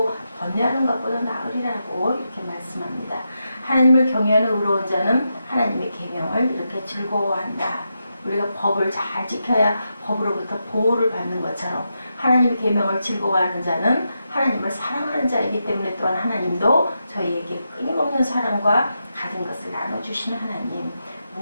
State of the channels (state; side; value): inverted; both; correlation -0.86